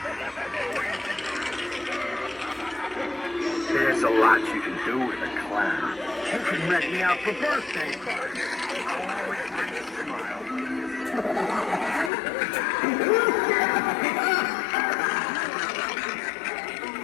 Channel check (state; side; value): drops out; right; at 12.1 s